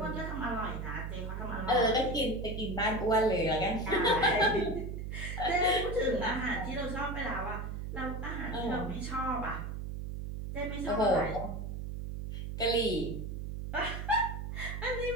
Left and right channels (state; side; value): noise; right; hum, 5 dB below the sound